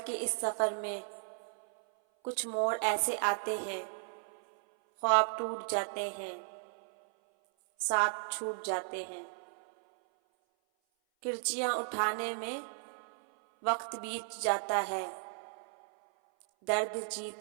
کے اس سفر میں کچھ موڑ ایسے آتے ہیں، خواب ٹوٹ جاتے ہیں، ساتھ چھوٹ جاتے ہیں۔ کرچیاں اٹھانے میں وقت بیت جاتا ہے، درد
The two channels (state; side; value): silent; left; 54 dB below the other